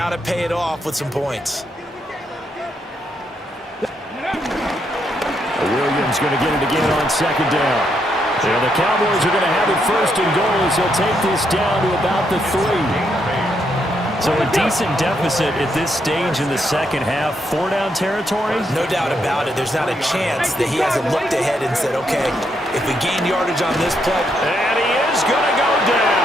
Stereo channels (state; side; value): normal; both; correlation 0.78